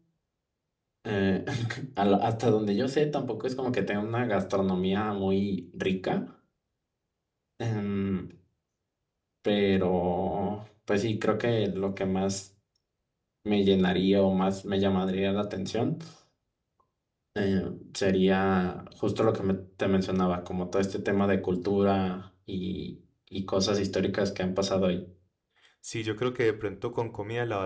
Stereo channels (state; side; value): identical; both; correlation 1.00